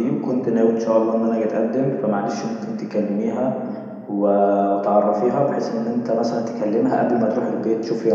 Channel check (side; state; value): both; identical; correlation 1.00